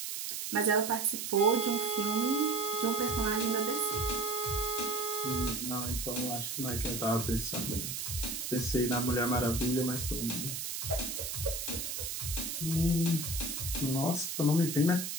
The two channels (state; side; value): noise; right; hiss, 4 dB below the sound